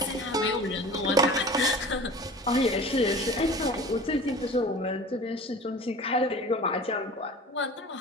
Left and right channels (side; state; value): both; normal; correlation 0.39